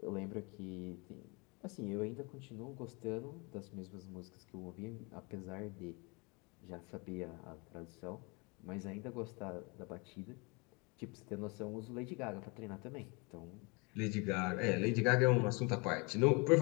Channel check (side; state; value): right; quieter; 29.5 dB